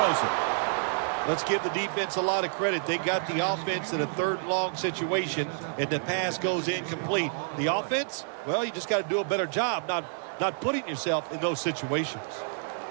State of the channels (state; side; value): silent; left; digital silence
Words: it. Let's give the defense a lot of credit. They got the offense in a 3rd long situation, and the pass goes incomplete. The offense, well, you just got to do a better job not putting yourself in those situations.